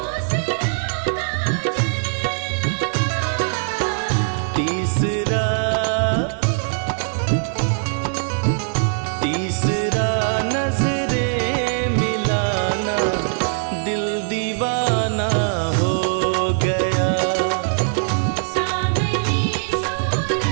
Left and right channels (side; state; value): left; silent; digital silence